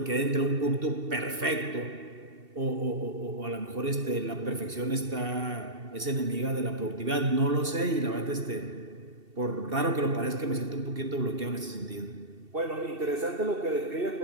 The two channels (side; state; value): left; late; 2.7 ms